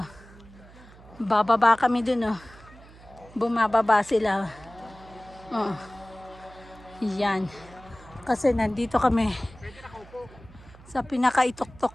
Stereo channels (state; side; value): noise; right; hum, 21 dB below the sound